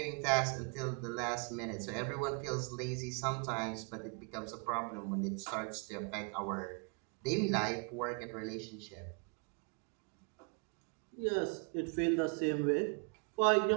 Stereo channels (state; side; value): quieter; left; 35.6 dB